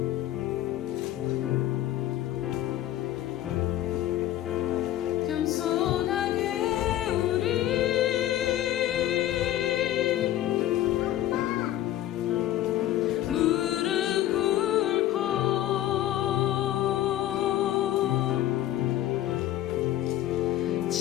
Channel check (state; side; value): quieter; right; 13.4 dB